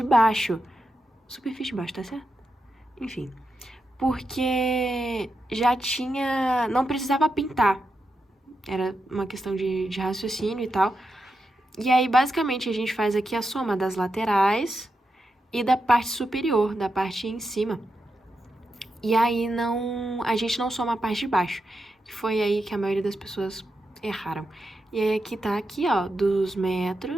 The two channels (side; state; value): both; normal; correlation 0.87